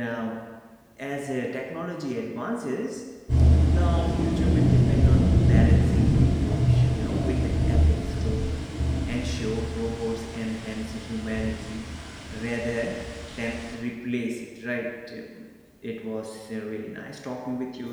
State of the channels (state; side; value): identical; both; correlation 1.00